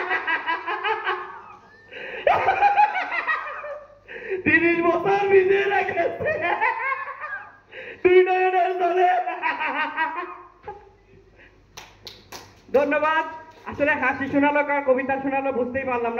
30 বছর ভিজিয়ে রেখেছে দুই নয়নের জলে। ধন্যবাদ। আসলে হাসি শোনালো কার কবিতা শোনালো বুঝতেই পারলাম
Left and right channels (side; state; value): both; identical; correlation 1.00